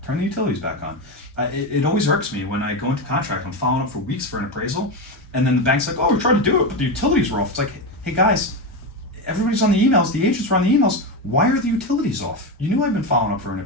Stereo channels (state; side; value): normal; both; correlation 0.15